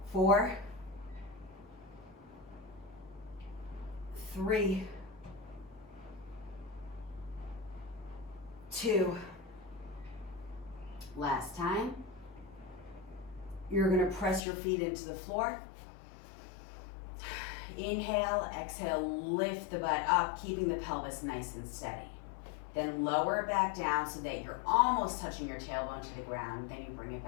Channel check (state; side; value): drops out; right; at 14.5 s